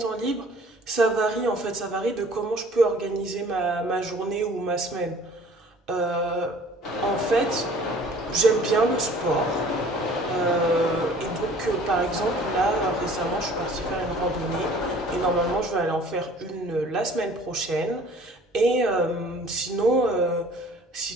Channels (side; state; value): both; normal; correlation 0.50